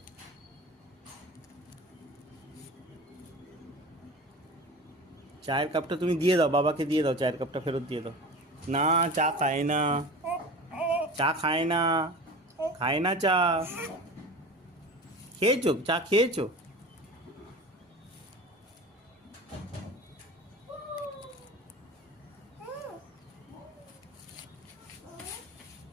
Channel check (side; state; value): both; normal; correlation 0.35